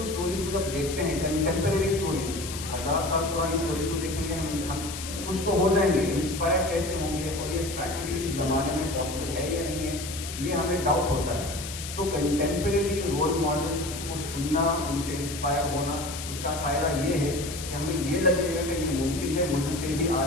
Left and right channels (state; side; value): noise; left; hiss, 9 dB below the sound